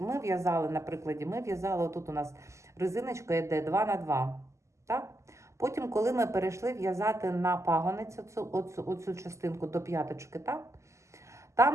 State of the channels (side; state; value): left; late; 0.14 ms